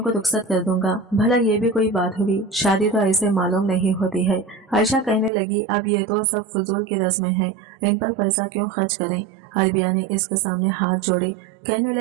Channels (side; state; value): left; drops out; at 5.3 s